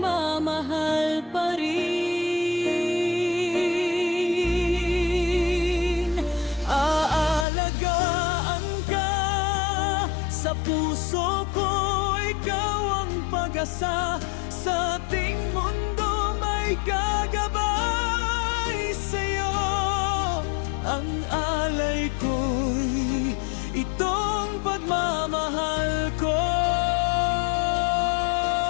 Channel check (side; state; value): right; drops out; at 7.5 s